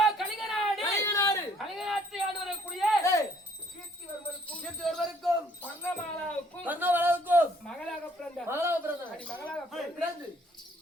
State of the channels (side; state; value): both; normal; correlation 0.62